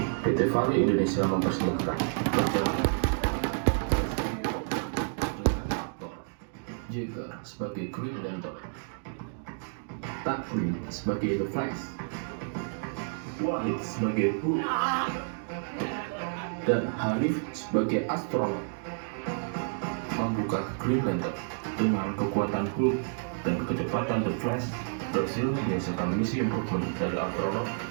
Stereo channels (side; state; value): left; silent; digital silence